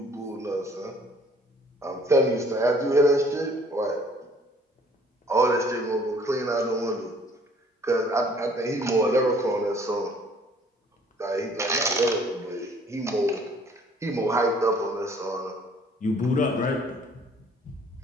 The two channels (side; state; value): both; normal; correlation 0.57